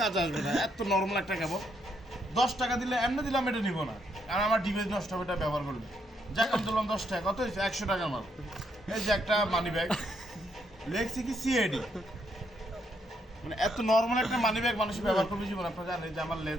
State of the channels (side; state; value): both; normal; correlation 0.76